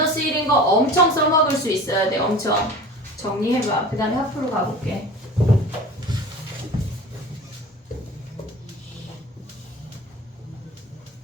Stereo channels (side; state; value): both; normal; correlation 0.39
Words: 1인 거 엄청 써먹을 수 있어야 돼. 엄청. 정리해봐. 그 다음에 하프로 가볼게.